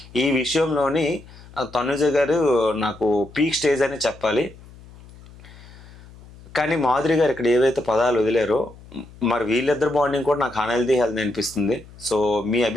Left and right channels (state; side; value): noise; left; hum, 21 dB below the sound